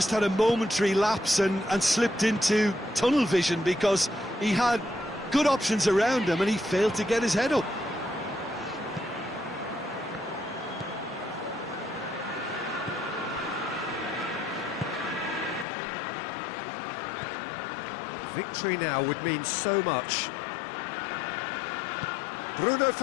had a momentary lapse and slipped into tunnel vision, because he had good options around him and he failed to get his head up. Victory now would mean so much. Bruno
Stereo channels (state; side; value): drops out; right; at 15.7 s